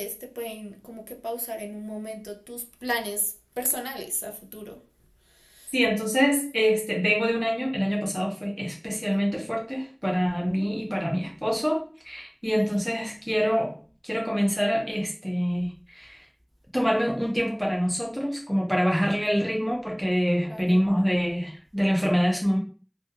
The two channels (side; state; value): both; identical; correlation 1.00